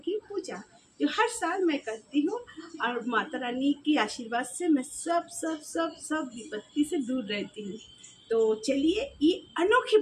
पूजा, जो हर साल मैं करती हूँ। और माता रानी की आशीर्वाद से मैं सब सब सब सब विपत्ति से दूर रहती हूँ। तो चलिए ये अनोखी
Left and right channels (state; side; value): identical; both; correlation 1.00